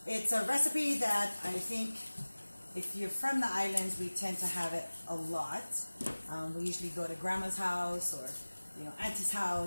It's a recipe that I think if you're from the islands, we tend to have it a lot. We usually go to grandma's house or auntie's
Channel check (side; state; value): both; inverted; correlation -1.00